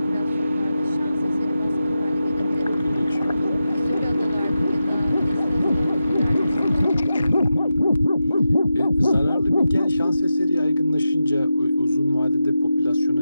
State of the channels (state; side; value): inverted; both; correlation -0.90